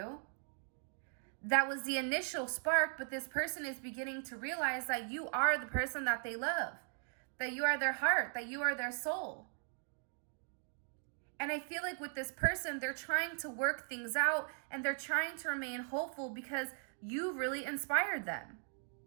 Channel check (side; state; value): left; silent; 52 dB below the other